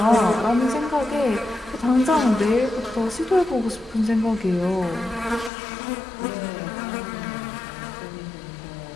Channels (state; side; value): drops out; right; at 5.5 s